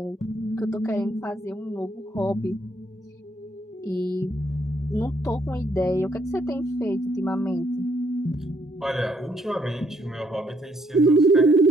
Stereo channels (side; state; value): both; normal; correlation 0.71